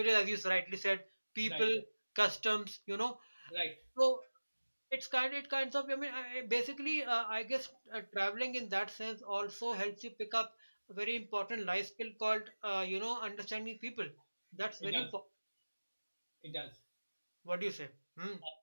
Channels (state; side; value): inverted; both; correlation -1.00